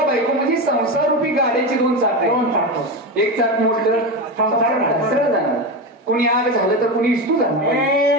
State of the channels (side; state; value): both; normal; correlation 0.18